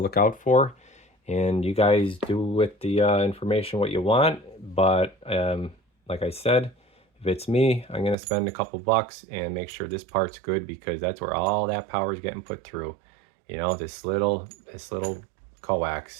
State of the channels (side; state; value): left; drops out; at 8.2 s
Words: out for. And you guys do with the information what you want. But like I said, if it's me, I'm going to spend a couple bucks and make sure this part's good, because that's where all that power is getting put through. You know, this little